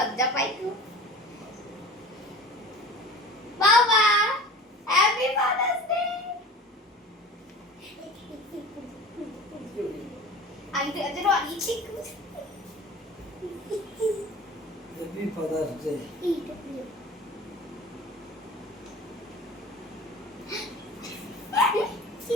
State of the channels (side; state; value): both; normal; correlation 0.39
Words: পাই খুব। বাবা হ্যাপি ফাদার্স ডে। আমি তো আজ রানি ঠিক হ্যাপি ফাদার্স ডে।